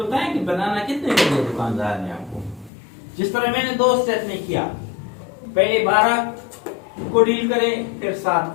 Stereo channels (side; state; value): right; drops out; at 2.7 s